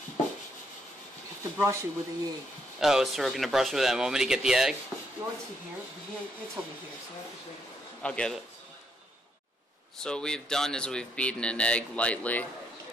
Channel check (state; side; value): normal; both; correlation 0.74